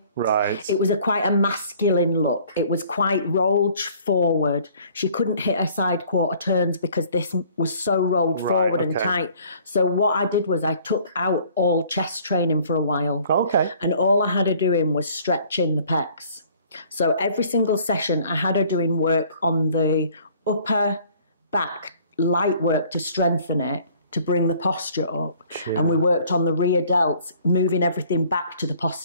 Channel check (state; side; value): inverted; both; correlation -0.56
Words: Right. It was quite a masculine look. It was quite rolled forward. She couldn't hit her side quarter turns because this was so rolled forward and tight. So what I did was I took out all chest training for a while. Okay. And all I had her doing was stretching the pecs. So every single session I had her doing work on the upper back, light work to strengthen it, to bring the posture up. And we worked on the rear delts, moving everything back to the